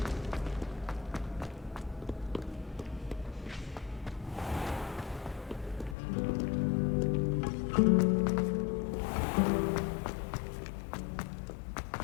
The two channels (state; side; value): drops out; right; at 6.0 s